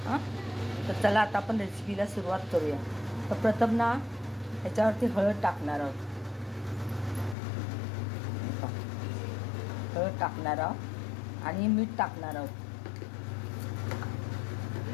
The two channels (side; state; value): right; drops out; at 7.4 s